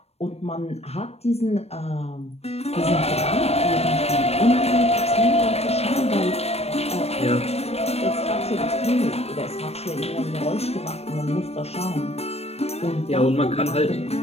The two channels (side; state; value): right; late; 0.30 ms